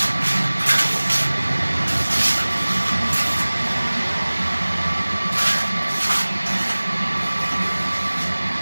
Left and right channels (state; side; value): inverted; both; correlation -1.00